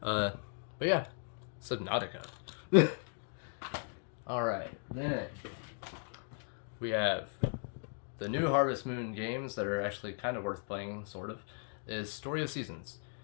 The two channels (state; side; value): silent; right; 53 dB below the other